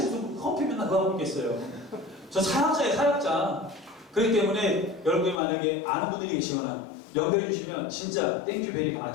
무슨 커피 맨날 그거 하고 있겠어요. 저 사역자예요. 사역자. 그렇기 때문에 여러분이 만약에 아는 분들이 계시거나 연결해 주시면 진짜 땡큐 베리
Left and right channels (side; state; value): right; drops out; at 5.4 s